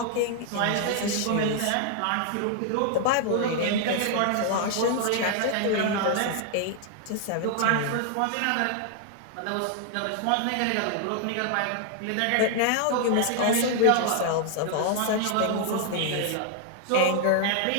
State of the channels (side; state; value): both; different; correlation 0.00